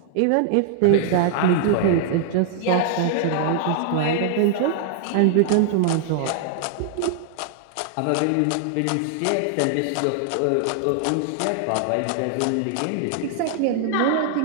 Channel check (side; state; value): both; different; correlation -0.01